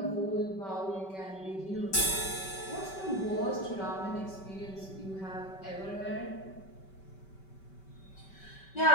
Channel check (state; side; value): late; right; 5.2 ms